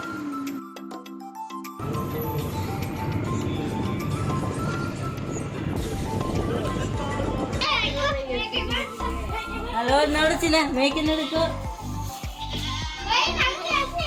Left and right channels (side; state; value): both; identical; correlation 1.00